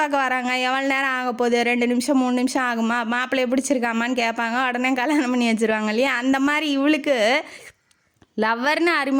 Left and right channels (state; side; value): identical; both; correlation 1.00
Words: வராங்க, எவ்வளோ நேரம் ஆக போகுது, 2 நிமிஷம் 3 நிமிஷம் ஆகுமா, மாப்பிள்ளைய பிடிச்சிருக்காமான்னு கேட்பாங்க, உடனே கல்யாணம் பண்ணி வச்சுருவாங்க இல்லையா. அந்த மாதிரி இவளுக்கு லவ்வர்னு